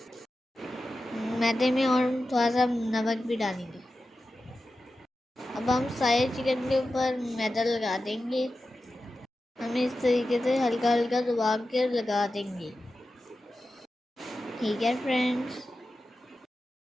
मैदे में और थोड़ा सा नमक भी डालेंगे। अब हम सारे चिकन के ऊपर मैदा लगा देंगे। हम इस तरीके से हल्का हल्का दबा के लगा देंगे। ठीक है फ्रेंड्स,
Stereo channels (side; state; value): both; normal; correlation 0.93